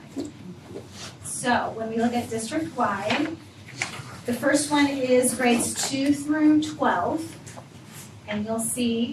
tonight. So when we look at district-wide, the first one is grades 2 through 12. And you'll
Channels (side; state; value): both; identical; correlation 1.00